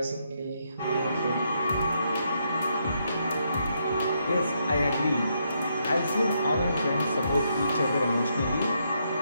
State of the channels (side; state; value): both; inverted; correlation -0.77